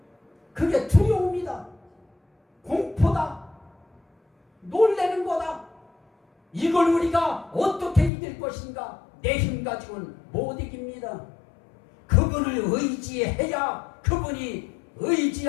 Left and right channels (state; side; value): drops out; right; at 8.1 s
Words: 그게 두려움이다. 공포다. 놀래는 거다. 이걸 우리가 어떻게 이길 것인가? 내 힘 가지고는 못 이깁니다. 그분을 의지해야 그분이